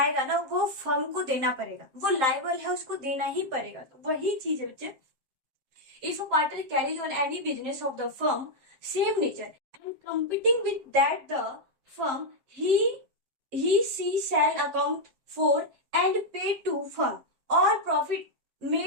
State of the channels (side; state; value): left; late; 7.5 ms